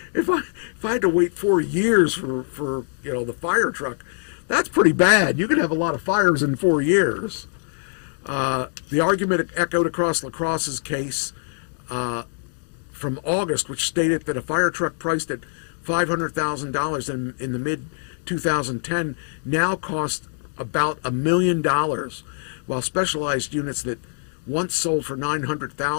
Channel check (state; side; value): silent; right; digital silence